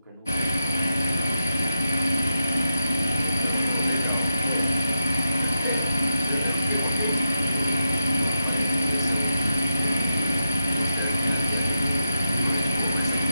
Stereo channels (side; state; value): both; inverted; correlation -0.85